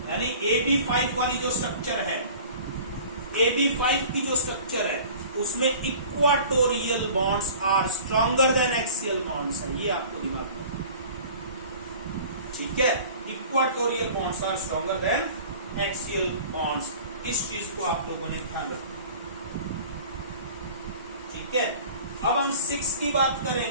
यानी AB5 वाली जो स्ट्रक्चर है, AB5 की जो स्ट्रक्चर है, उसमें equatorial bonds are stronger than axial bonds है, ये आपको दिमाग में, ठीक है। Equatorial bonds are stronger than axial bonds, इस चीज को आप लोगों ने ध्यान रखना, ठीक है। अब हम 6 की बात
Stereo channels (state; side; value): inverted; both; correlation -0.44